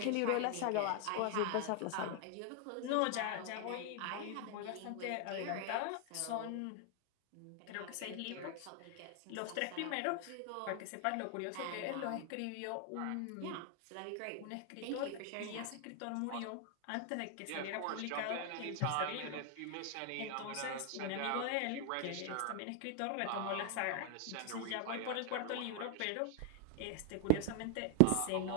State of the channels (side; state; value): both; different; correlation 0.00